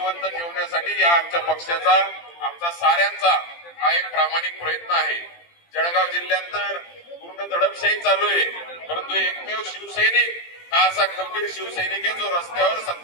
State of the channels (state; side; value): late; right; 17 ms